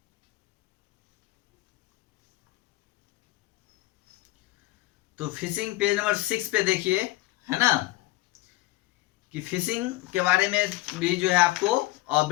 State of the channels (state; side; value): quieter; right; 19.0 dB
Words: तो फिशिंग पेज नंबर 6 पे देखिए, है ना, कि फिशिंग के बारे में भी जो है आपको